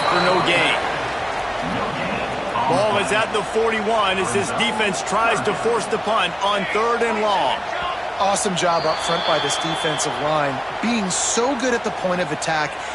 for no gain. Ball is at the 41 as this defense tries to force the punt on 3rd and long. Awesome job up front by this defensive line, being so good at the point of attack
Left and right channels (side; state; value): both; identical; correlation 1.00